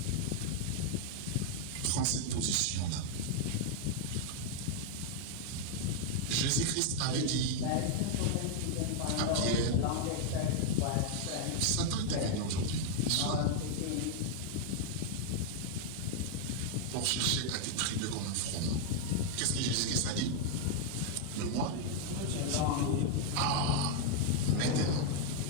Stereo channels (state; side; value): different; both; correlation 0.00